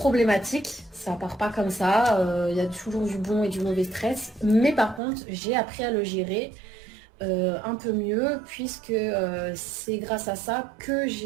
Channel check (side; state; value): left; drops out; at 5.0 s